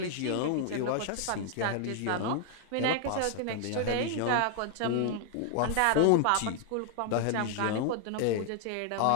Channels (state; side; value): different; both; correlation 0.00